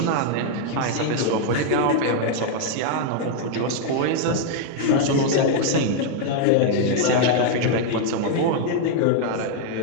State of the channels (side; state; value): both; different; correlation 0.00